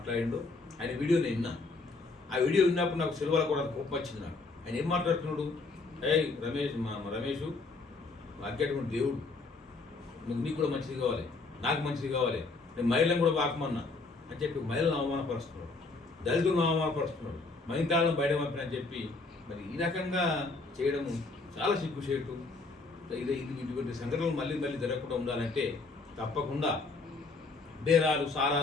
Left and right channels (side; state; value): right; quieter; 3.7 dB